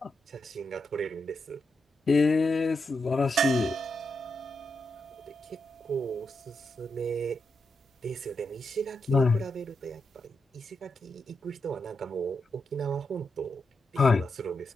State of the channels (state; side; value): normal; both; correlation 0.85